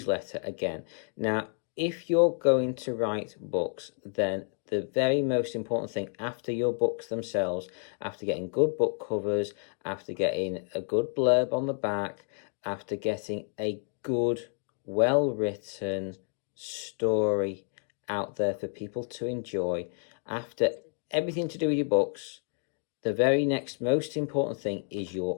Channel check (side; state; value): right; silent; 55 dB below the other